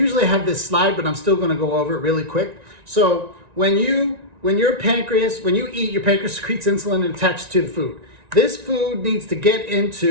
have this slide, but I'm still going to go over it really quick. So when you eat, your pancreas secretes insulin and attaches to the food. This food needs to get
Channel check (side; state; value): left; late; 1.9 ms